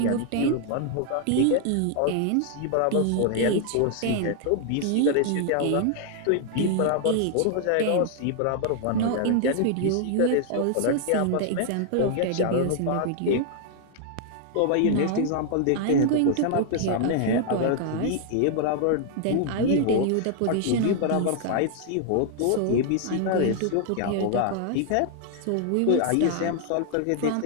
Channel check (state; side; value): different; both; correlation 0.00